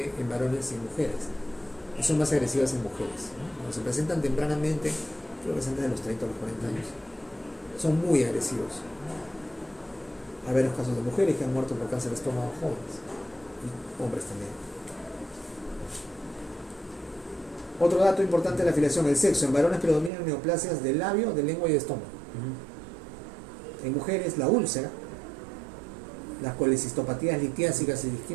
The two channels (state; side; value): drops out; left; at 20.1 s